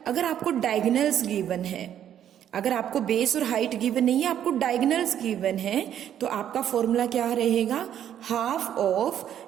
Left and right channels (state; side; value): quieter; left; 10.2 dB